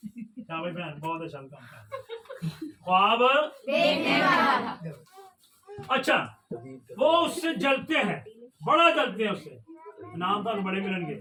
ख्वाब अच्छा, वो उससे जलते हैं, बड़ा जलते हैं उससे। नाम तो बड़े मिलेंगे।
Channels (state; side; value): identical; both; correlation 1.00